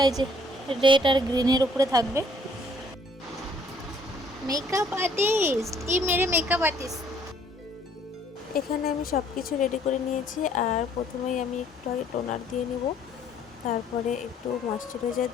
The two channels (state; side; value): normal; both; correlation 0.61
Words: এই যে রেড আর গ্রিনের উপরে থাকবে। মেকআপ আর্টিস্ট, মেরে মেকআপ আর্টিস্ট। এখানে আমি সব কিছু রেডি করে নিয়েছি। আর প্রথমেই আমি একটু আগে টোনার দিয়ে নিব, তারপরে একটু ময়শ্চারাইজার